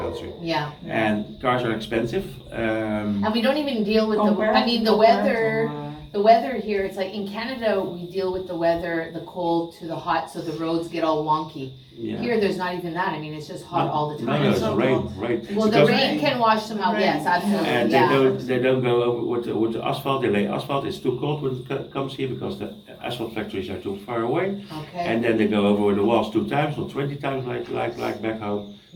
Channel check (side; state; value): both; identical; correlation 1.00